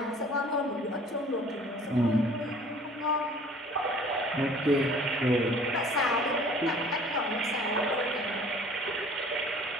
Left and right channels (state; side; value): normal; both; correlation 0.51